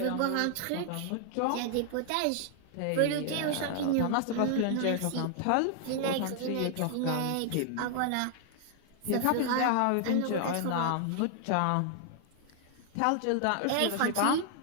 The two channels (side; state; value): both; different; correlation 0.00